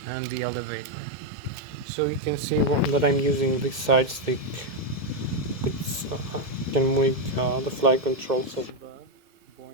and the elevator. So you can see that I'm using this side stick, which can make the flight controls of the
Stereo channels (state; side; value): late; left; 2.1 ms